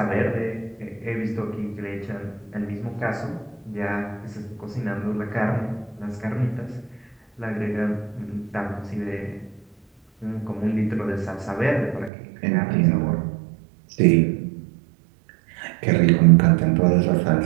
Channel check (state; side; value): drops out; left; at 12.1 s